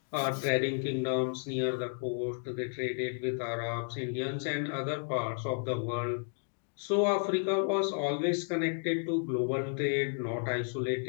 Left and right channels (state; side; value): silent; right; 56 dB below the other